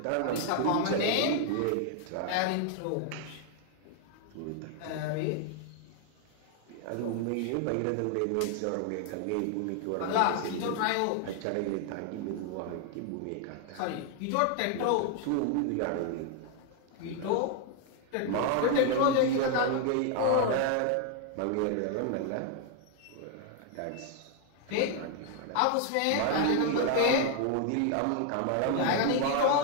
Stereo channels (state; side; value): different; both; correlation 0.00